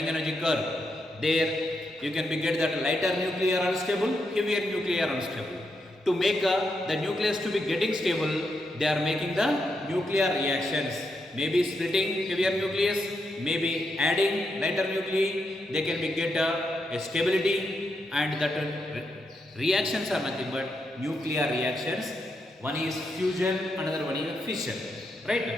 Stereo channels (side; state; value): both; normal; correlation 0.83